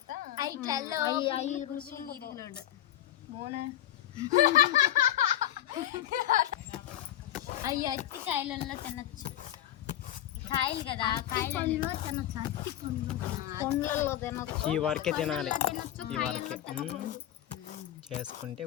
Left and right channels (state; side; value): quieter; right; 12.2 dB